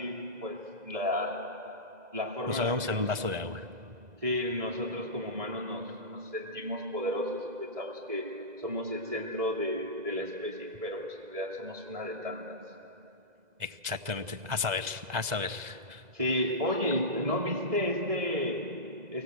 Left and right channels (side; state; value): left; late; 2.0 ms